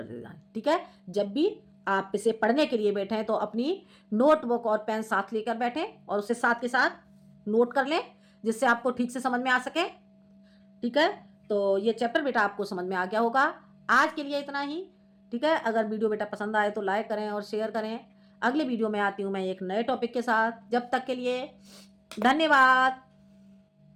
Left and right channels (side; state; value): both; identical; correlation 1.00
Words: देना। ठीक है, जब भी आप इसे पढ़ने के लिए बैठें तो अपनी नोटबुक और पेन साथ लेकर बैठें और उसे साथ के साथ नोट कर लें जिससे आपको ठीक से समझ में आ सके। ठीक है, तो ये चैप्टर बेटा आपको समझ में आ गया होगा। आज के लिए इतना ही। ठीक है, अगर वीडियो बेटा पसंद आए तो लाइक करें और शेयर करें। अगले वीडियो में आती हूँ मैं एक नए टॉपिक के साथ। जब तक के लिए धन्यवाद।